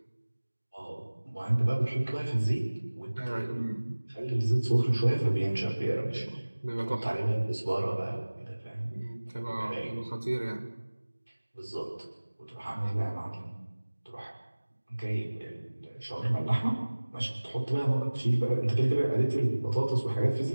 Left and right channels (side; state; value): both; inverted; correlation -1.00